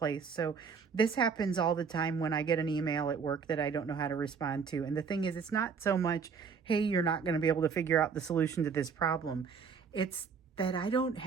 So this happens all the time when I get an email at work that I don't know how to respond to. And the thing is, it's not so much, hey, you're not going to be able to figure out the solution to this problem. It's that I don't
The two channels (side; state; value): left; quieter; 5.9 dB